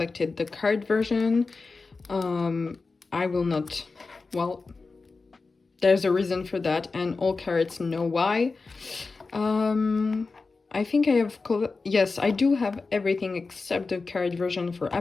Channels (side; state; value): right; quieter; 4.1 dB